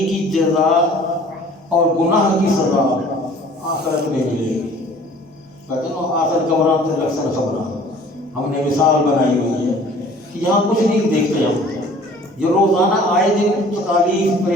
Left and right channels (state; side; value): normal; both; correlation 0.50